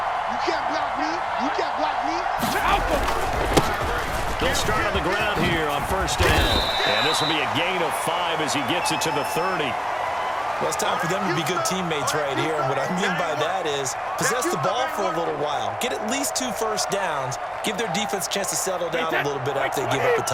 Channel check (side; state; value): both; identical; correlation 1.00